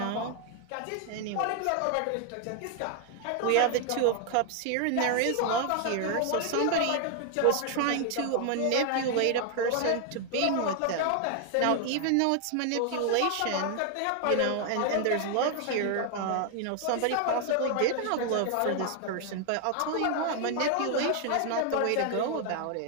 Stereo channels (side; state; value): both; different; correlation 0.00